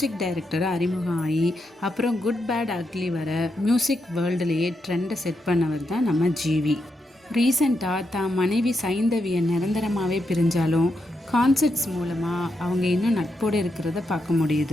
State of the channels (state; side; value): normal; both; correlation 0.83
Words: டைரக்டராக அறிமுகம் ஆகி அப்புறம் குட் பேட் அக்லி வர மியூசிக் வேர்ல்டுலேயே ட்ரெண்டை செட் பண்ணவர் தான் நம்ம ஜிவி. ரீசெண்டாக தான் மனைவி சைந்தவியை நிரந்தரமாகவே பிரிஞ்சாலும் கான்சர்ட்ஸ் மூலமாக அவங்க இன்னும் நட்போடு இருக்கிறத பார்க்க